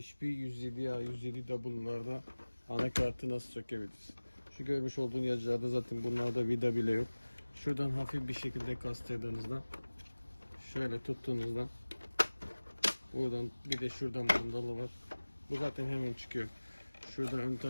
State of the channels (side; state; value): both; inverted; correlation -1.00